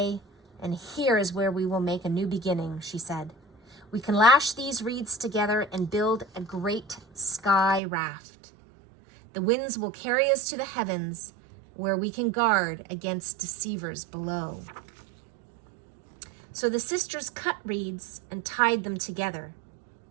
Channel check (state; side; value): drops out; left; at 7.8 s